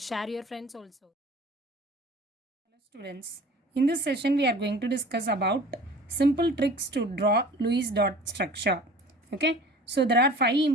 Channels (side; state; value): both; normal; correlation 0.44